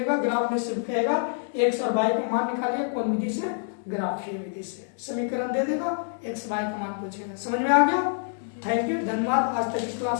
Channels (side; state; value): right; silent; digital silence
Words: ग्राफ में सिर्फ कहेगा x और y का मान निकालिए, कौन विधि से, ग्राफीय विधि से। समीकरण दे देगा, x y का मान पूछेगा। समझ में आ गया, थैंक यू, धन्यवाद। आज तक की